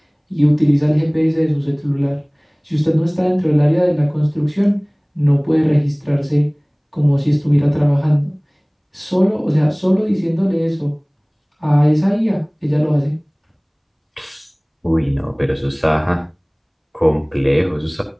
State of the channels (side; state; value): both; identical; correlation 1.00